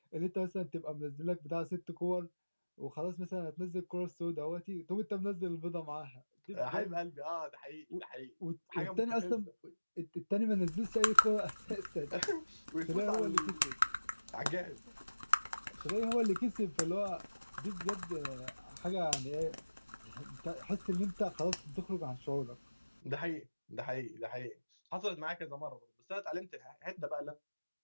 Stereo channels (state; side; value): inverted; both; correlation -1.00